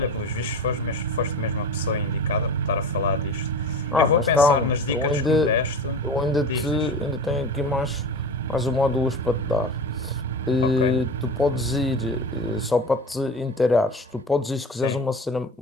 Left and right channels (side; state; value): both; normal; correlation 0.32